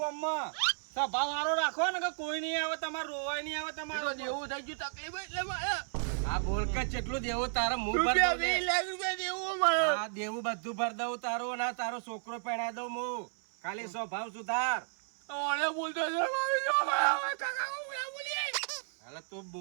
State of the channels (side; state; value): left; silent; 56 dB below the other